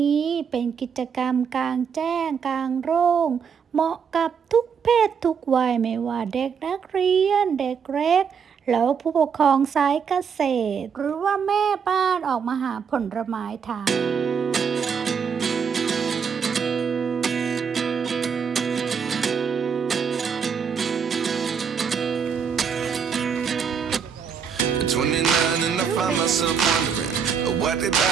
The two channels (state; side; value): quieter; left; 6.7 dB